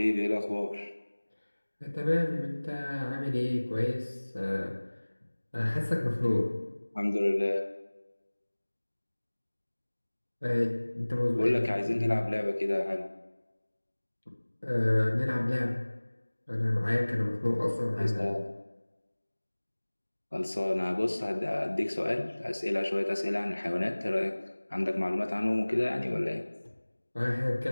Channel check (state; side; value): inverted; both; correlation -1.00